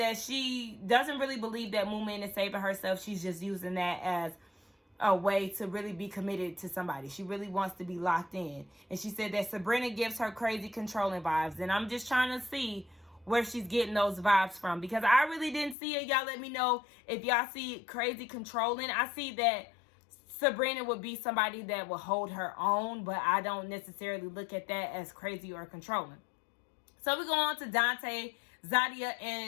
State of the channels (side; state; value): right; drops out; at 15.8 s